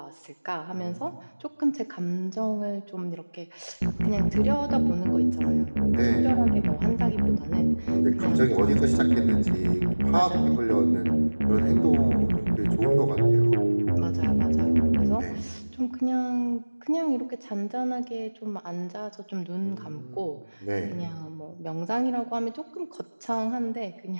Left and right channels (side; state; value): both; inverted; correlation -1.00